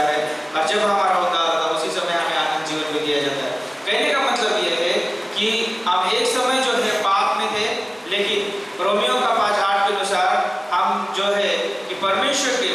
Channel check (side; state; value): both; identical; correlation 1.00